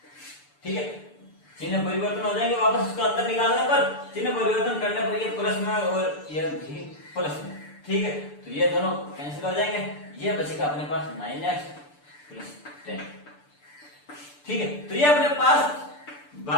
ठीक है। चिन्ह परिवर्तन हो जाएंगे, वापस उसको अंदर निकालने पर चिन्ह परिवर्तन करने पर ये प्लस में और ये भी प्लस में, ठीक है। तो ये दोनों कैंसिल हो जाएंगे, ये बचेगा अपने पास 9x प्लस 10, ठीक है। तो ये अपने पास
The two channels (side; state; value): right; late; 6.8 ms